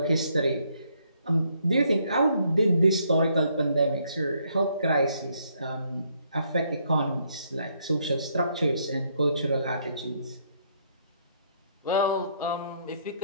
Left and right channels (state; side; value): inverted; both; correlation -0.71